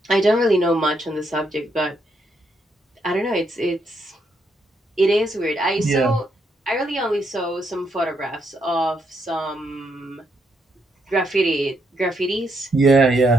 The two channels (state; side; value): normal; both; correlation 0.77